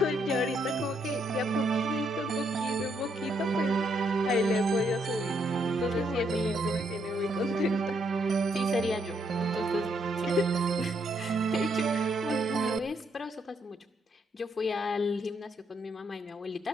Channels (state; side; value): normal; both; correlation 0.74